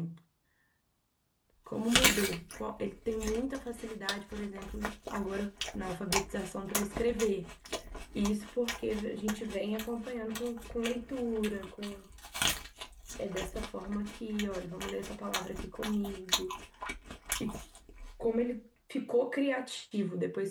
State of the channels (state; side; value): identical; both; correlation 1.00